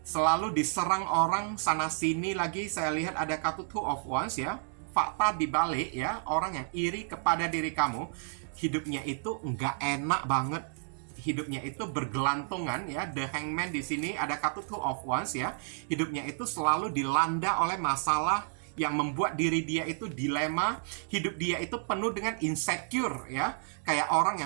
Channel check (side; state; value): left; silent; digital silence